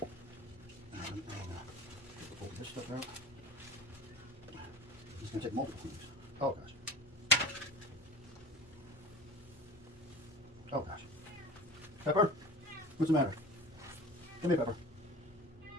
And pull this stuff out. It's going to take multiple cleans. Oh gosh. Oh gosh. Pepper? What's the matter? Come here, Pepper.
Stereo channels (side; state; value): both; normal; correlation 0.34